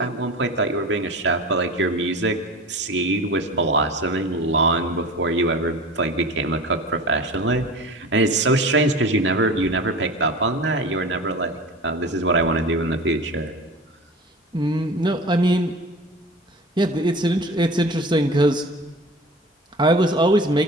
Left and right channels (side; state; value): both; normal; correlation 0.35